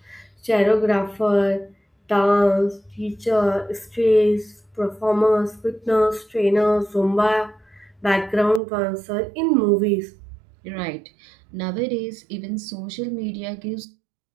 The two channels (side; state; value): left; drops out; at 8.6 s